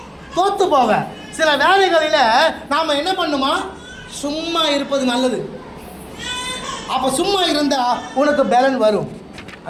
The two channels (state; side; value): identical; both; correlation 1.00